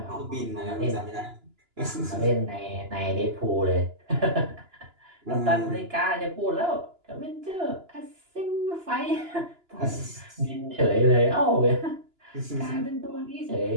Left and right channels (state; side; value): late; left; 2.9 ms